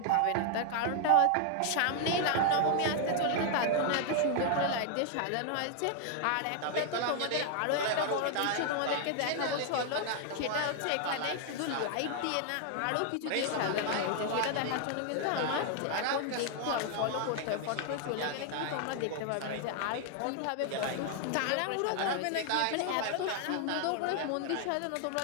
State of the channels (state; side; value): different; both; correlation 0.00